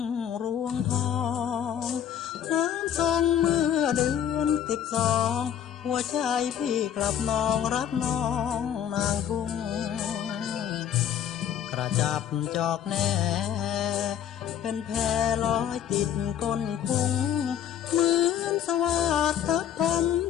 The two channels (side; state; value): right; quieter; 9.5 dB